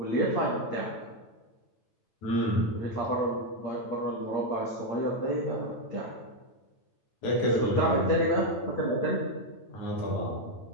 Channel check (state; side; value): late; right; 9.0 ms